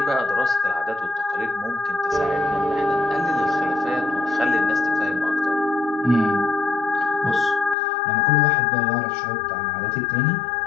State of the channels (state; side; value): drops out; right; at 7.8 s